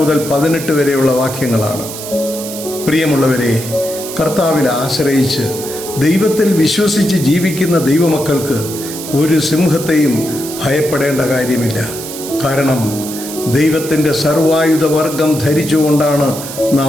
18 വരെയുള്ള വാക്യങ്ങളാണ്. പ്രിയമുള്ളവരെ, കർത്താവിൽ ആശ്രയിച്ച് ദൈവത്തിൽ വിശ്വസിച്ച് ജീവിക്കുന്ന ദൈവമക്കൾക്ക് ഒരു സിംഹത്തെയും ഭയപ്പെടേണ്ട കാര്യമില്ല. കാരണം ദൈവത്തിൻ്റെ സർവായുധവർഗം ധരിച്ചുകൊണ്ടാണ്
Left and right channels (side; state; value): right; noise; hiss, 10 dB below the sound